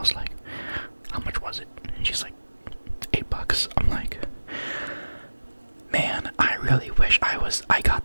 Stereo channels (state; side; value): inverted; both; correlation -1.00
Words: like, how much was it? And she's like, $8. I'm like, man, I really wish I